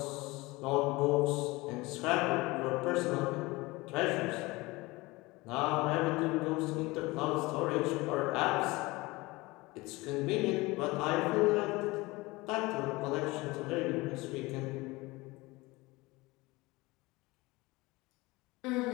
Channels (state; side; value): quieter; right; 22.2 dB